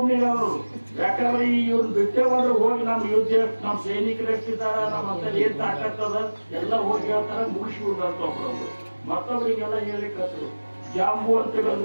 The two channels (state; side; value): inverted; both; correlation -1.00